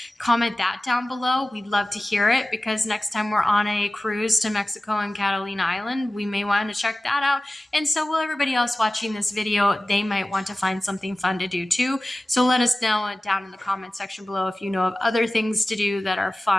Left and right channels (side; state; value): both; normal; correlation 0.96